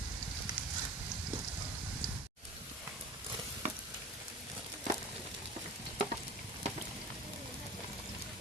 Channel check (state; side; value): normal; both; correlation 0.36